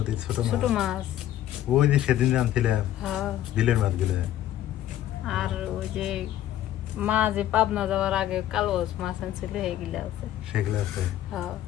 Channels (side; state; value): right; quieter; 12.5 dB